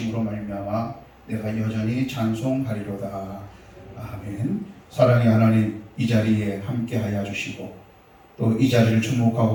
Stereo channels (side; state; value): both; identical; correlation 1.00